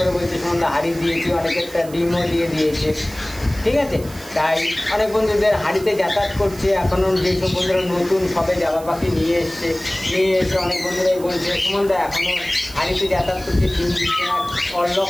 বলছে সন্ধ্যা হাড়ি দিয়েছি, অনেকে একটা ডিমও দিয়ে দিয়েছে। ঠিক আছে, তাই অনেক বন্ধুদের হাড়িতে যাতায়াত করছে। এখনও যেসব বন্ধুরা নতুন সবে জাবা পাখি নিয়ে এসে অনেক বন্ধুরাই বলছে সুমনদা এখনও হাড়িতে যাতায়াত করছে, ডিম দিচ্ছে না,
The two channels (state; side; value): noise; right; hiss, 19 dB below the sound